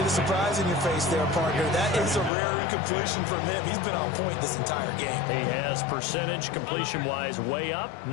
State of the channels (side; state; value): right; drops out; at 2.3 s